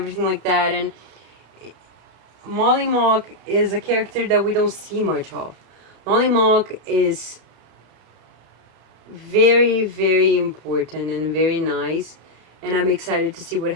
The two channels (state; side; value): late; left; 33 ms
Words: like that. And Molly Mock is a character that we don't see much of. Molly Mock is very, very important and very nice, and I'm excited to see what